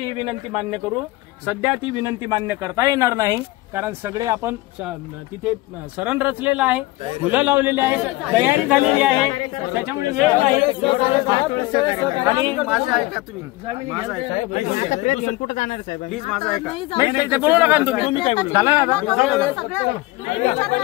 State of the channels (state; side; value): quieter; right; 19.6 dB